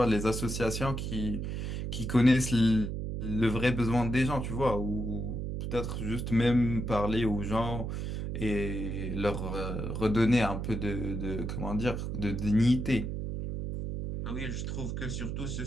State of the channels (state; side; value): noise; right; hum, 3 dB below the sound